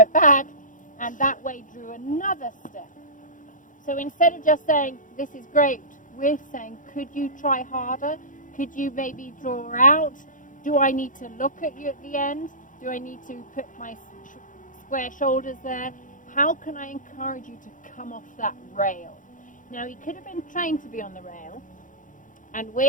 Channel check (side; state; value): right; late; 0.38 ms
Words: back, and that way drew another step. So instead of just saying, this is great, we're saying, could you try harder? Could you maybe draw out? Do I need to look at you at the end? Do I need to put my square shoulders there? How can I encourage you to come off that rail? Now, he could have been trained to be on the rail, and